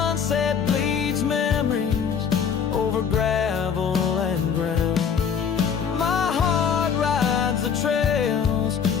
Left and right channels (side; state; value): right; quieter; 7.1 dB